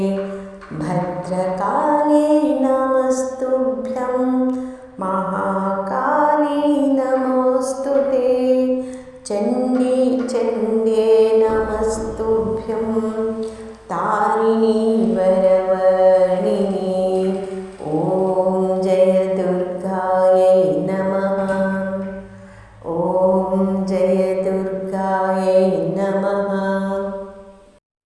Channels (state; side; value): identical; both; correlation 1.00